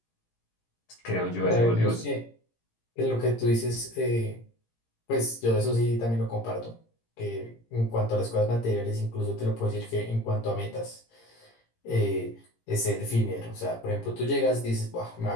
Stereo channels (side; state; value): right; late; 17 ms